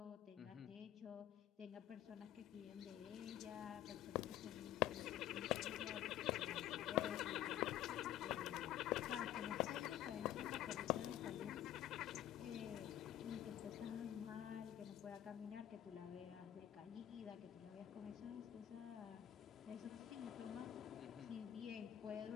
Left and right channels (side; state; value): right; quieter; 12.1 dB